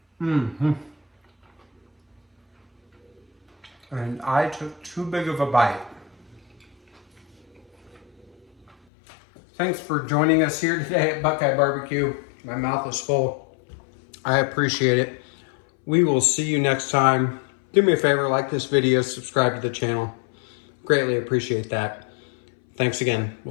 Mm-hmm. And I took too big of a bite. Thanks for joining us here today at BuQeye Barbecue. My mouth is full. I appreciate it. We will see you next time. Do me a favor, like this video, subscribe to the channel. Greatly appreciate that. Thanks again.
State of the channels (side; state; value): right; drops out; at 8.8 s